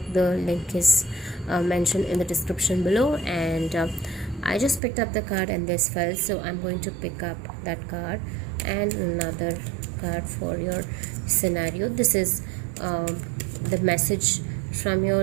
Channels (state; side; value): drops out; left; at 4.8 s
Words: the link is mentioned in the description below. And I just picked up the card and this fell, so I'm going to pick up that card and another card for your scenario. This is the message from your